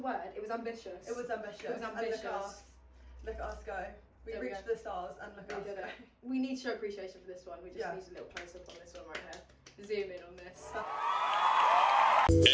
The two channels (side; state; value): both; identical; correlation 1.00